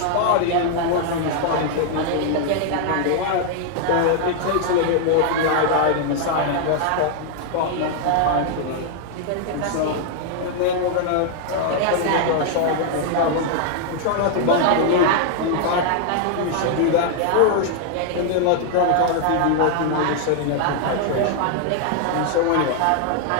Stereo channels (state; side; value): different; both; correlation 0.00